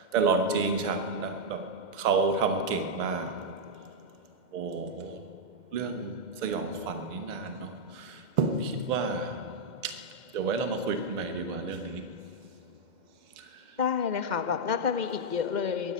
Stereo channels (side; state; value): left; late; 2.1 ms